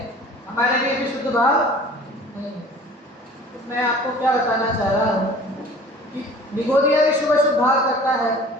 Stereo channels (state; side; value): normal; both; correlation 0.46